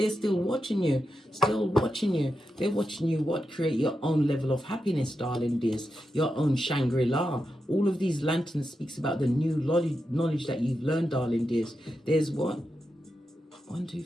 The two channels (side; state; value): both; normal; correlation 0.88